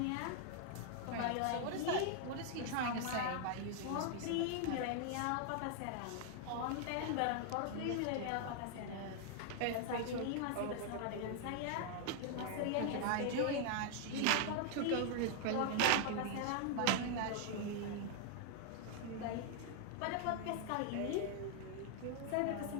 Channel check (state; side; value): different; both; correlation 0.00